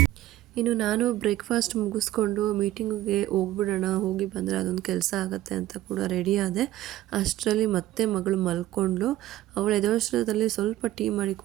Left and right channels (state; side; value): quieter; left; 14.8 dB